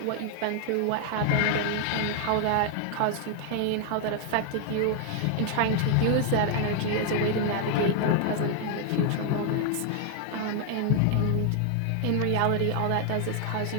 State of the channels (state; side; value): different; both; correlation 0.00